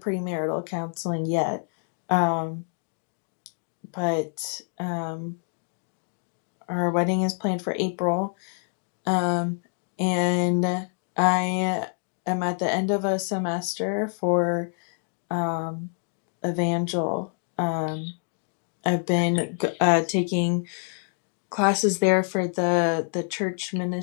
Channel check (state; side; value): silent; right; 60 dB below the other